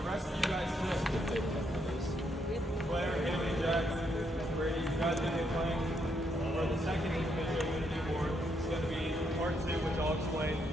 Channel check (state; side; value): normal; both; correlation 0.76